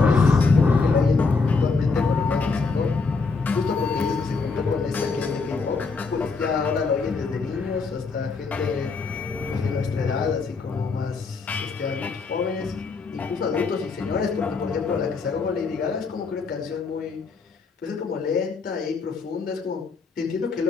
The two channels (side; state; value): right; quieter; 4.4 dB